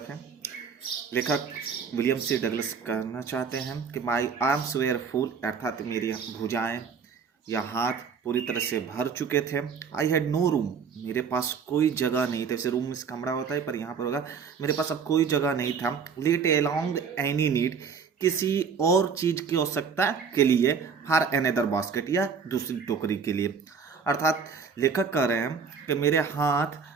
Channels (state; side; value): quieter; left; 6.1 dB